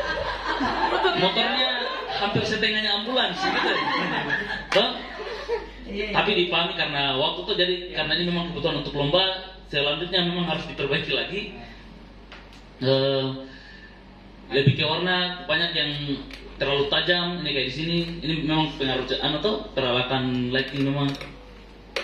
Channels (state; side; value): identical; both; correlation 1.00